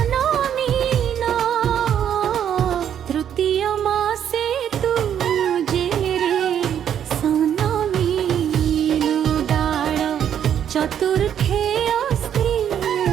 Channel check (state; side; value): quieter; left; 9.3 dB